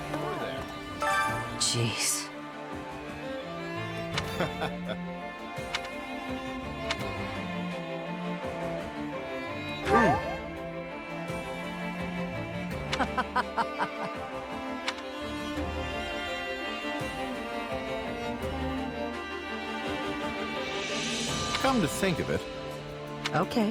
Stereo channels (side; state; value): both; identical; correlation 1.00